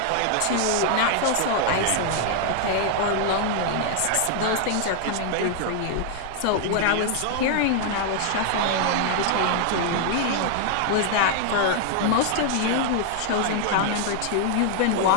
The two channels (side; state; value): both; different; correlation 0.00